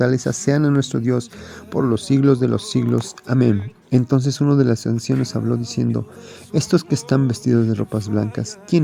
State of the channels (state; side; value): identical; both; correlation 1.00